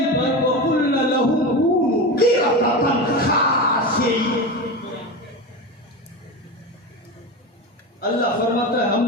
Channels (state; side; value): normal; both; correlation 0.22